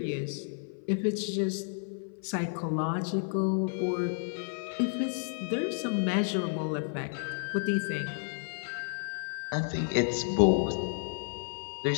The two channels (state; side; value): silent; right; 57 dB below the other